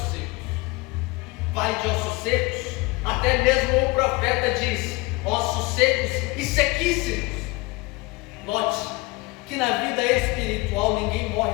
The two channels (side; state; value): right; quieter; 23.8 dB